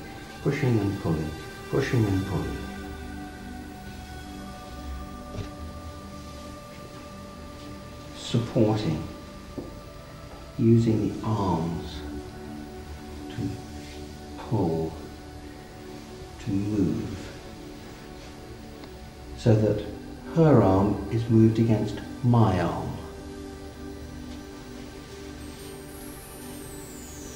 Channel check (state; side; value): identical; both; correlation 1.00